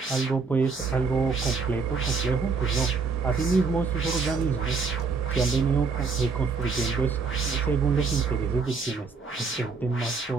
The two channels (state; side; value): quieter; left; 4.8 dB